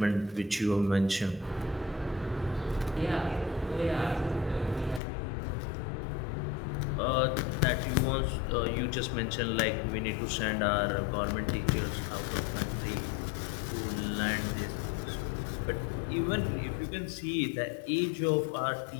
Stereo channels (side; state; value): right; drops out; at 5.0 s